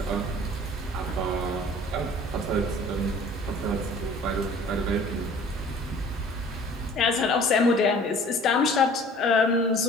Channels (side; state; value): both; normal; correlation 0.49